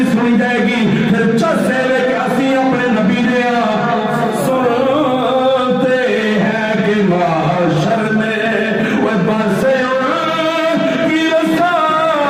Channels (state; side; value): identical; both; correlation 1.00